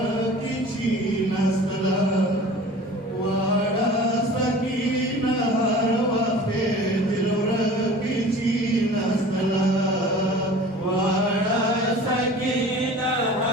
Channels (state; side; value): normal; both; correlation 0.42